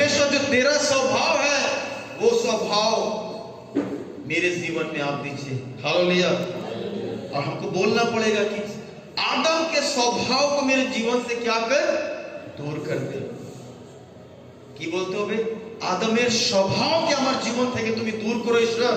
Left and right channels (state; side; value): identical; both; correlation 1.00